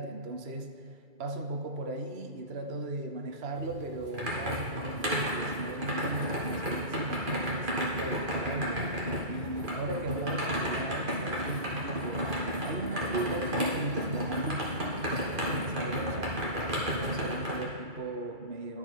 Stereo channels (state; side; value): late; left; 2.3 ms